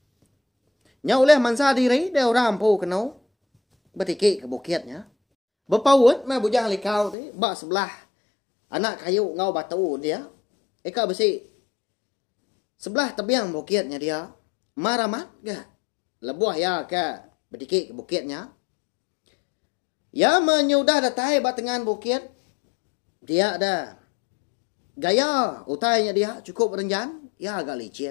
Nyau leh mansa diri dia orang rampu kenau. Bertiki ke bukitnya. Berpaut mah bujang likau tu bak sebelah anak kayu ngau batu dia. Eka besi sebelah tebiang bukitnya dia. Maramat ke lebuah ya ke bertiki ke bukitnya. Ya menyudah datai batengan bukit. Dia ada gaya utainya dia cukup renjan. Ya agak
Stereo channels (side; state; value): right; drops out; at 7.2 s